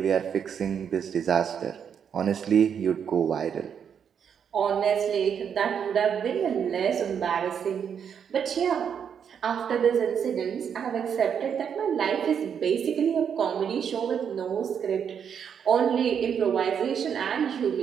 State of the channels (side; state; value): left; quieter; 7.7 dB